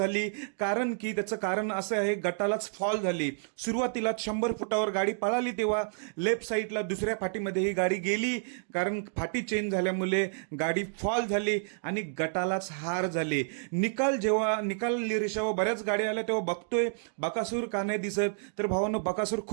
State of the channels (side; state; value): left; silent; digital silence